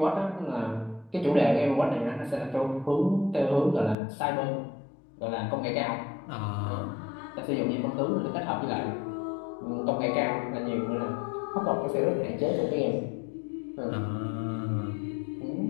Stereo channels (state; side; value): drops out; right; at 4.0 s